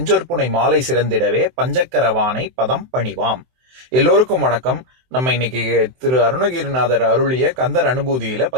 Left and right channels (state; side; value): late; left; 23 ms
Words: மாலை சிறந்திடவே பஞ்சக்கரவானை பதம் பணிவாம். எல்லோருக்கும் வணக்கம். நம்ம இன்னைக்கு திரு அருணகிரிநாதர் அருளிய கந்தர் அனுபூதியில